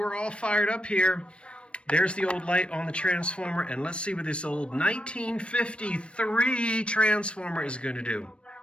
all fired up here. There's the old light on the transformer, and let's see what this old 1953 transformer is going to do.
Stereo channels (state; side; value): late; right; 0.059 ms